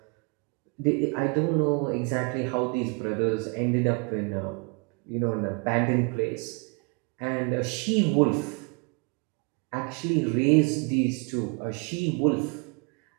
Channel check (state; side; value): quieter; left; 33.7 dB